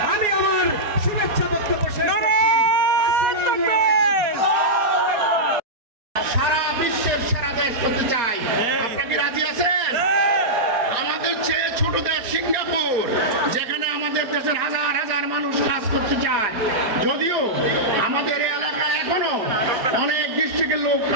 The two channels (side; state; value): left; late; 4.1 ms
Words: আমি আমার শুভেচ্ছা বক্তব্য শেষ করছি। সারা বিশ্বের সেরা দেশ করতে চাই। আপনি কি রাজি আছেন? আমাদের চেয়ে ছোট দেশ সিঙ্গাপুর, যেখানে আমাদের দেশের হাজার হাজার মানুষ কাজ করতে চায়। যদিও আমাদের এই এলাকায় এখনো অনেক ডিস্ট্রিক্টের লোক